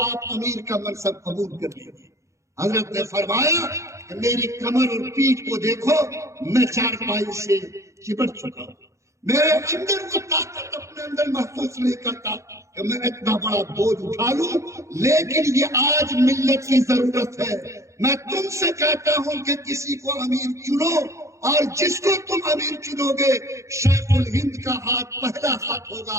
آپ امیر کا منصب قبول کر لیجیے۔ حضرت نے فرمایا کہ میری کمر اور پیٹھ کو دیکھو، میں چارپائی سے چپٹ چکا ہوں، میرے اندر وہ طاقت اپنے اندر محسوس نہیں کرتا کہ میں اتنا بڑا بوجھ اٹھا لوں، لیکن یہ آج ملت کی ضرورت ہے۔ میں تم سے کہتا ہوں کہ کسی کو امیر چنو، اور جس کو تم امیر چنو گے شیخ الہند کا ہاتھ پہلا ہاتھ ہوگا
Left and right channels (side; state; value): left; late; 0.14 ms